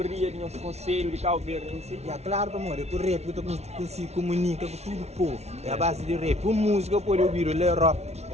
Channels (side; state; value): left; late; 0.31 ms